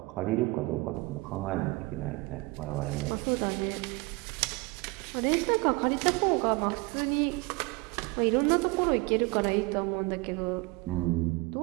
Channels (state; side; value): quieter; left; 24.7 dB